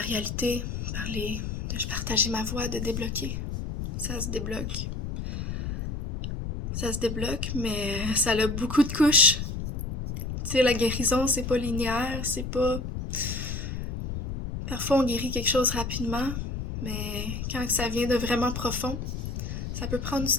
de partager ma voix, de débloquer. Ça se débloque. Ça se débloque, mais ça a beaucoup de couches. Tu sais, la guérison, c'est pas linéaire, c'est pas... Parfois, on guérit quelque chose rapidement, mais quand ça vient de vraiment profond, ça peut prendre du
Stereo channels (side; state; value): left; noise; rumble, 5 dB below the sound